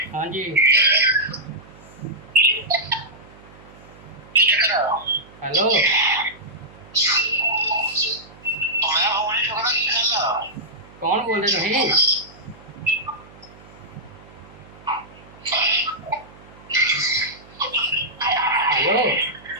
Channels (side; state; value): right; noise; hum, 22 dB below the sound